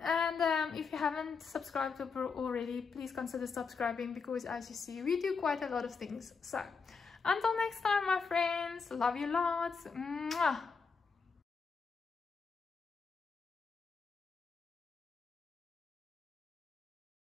if you haven't subscribed already, please consider subscribing, because as you see, we do quite a lot of things. So until next time, my friends, love you lots. Mwah.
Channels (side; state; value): right; quieter; 5.3 dB